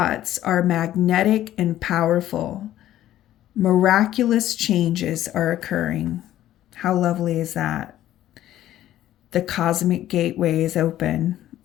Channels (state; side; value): quieter; right; 13.1 dB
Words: are magnetic and powerful. Miraculous changes are occurring. How lovely is that? The cosmic gateway is open.